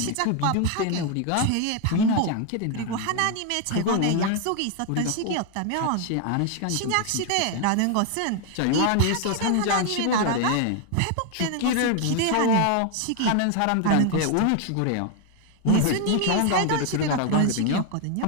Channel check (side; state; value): both; different; correlation 0.01